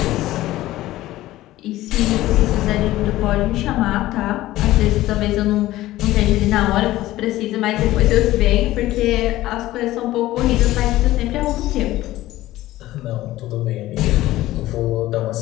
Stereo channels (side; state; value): right; quieter; 16.0 dB